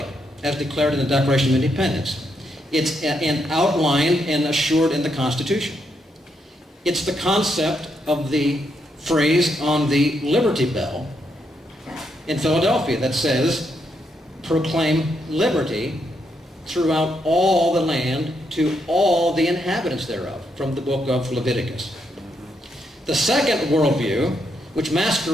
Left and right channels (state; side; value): normal; both; correlation 0.79